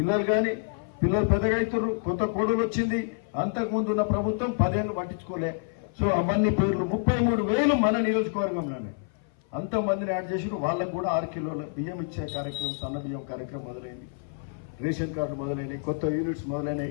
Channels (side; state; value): right; silent; 57 dB below the other